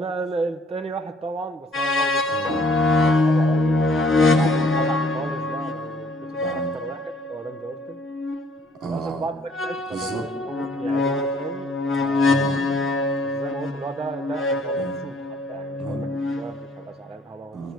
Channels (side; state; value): both; normal; correlation 0.61